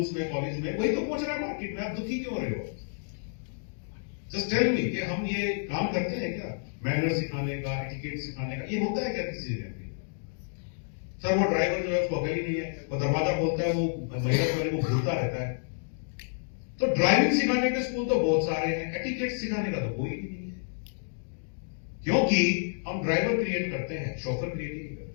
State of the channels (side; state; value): right; silent; digital silence